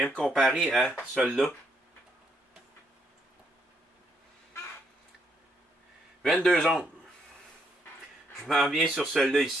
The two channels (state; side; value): normal; both; correlation 0.74